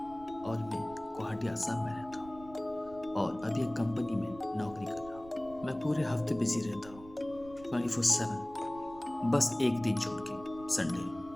और मैं गुवाहाटी आसाम में रहता हूँ और अभी एक कंपनी में नौकरी कर रहा हूँ। मैं पूरे हफ्ते बिजी रहता हूँ 24/7, बस एक दिन छोड़ के,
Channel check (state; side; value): noise; right; rumble, 19 dB below the sound